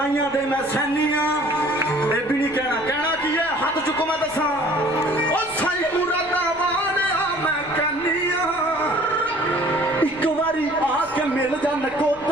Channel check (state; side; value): noise; left; rumble, 23 dB below the sound